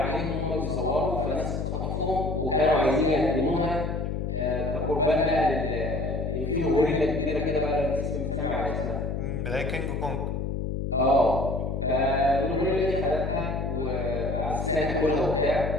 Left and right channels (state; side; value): noise; left; hum, 2 dB below the sound